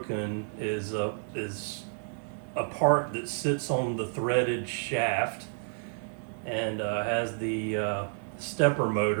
is a part that sits on the threaded shaft and has the stepper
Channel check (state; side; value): silent; left; 58 dB below the other